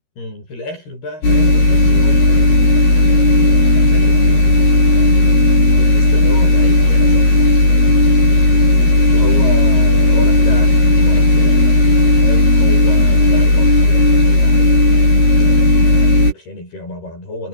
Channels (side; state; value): right; late; 13 ms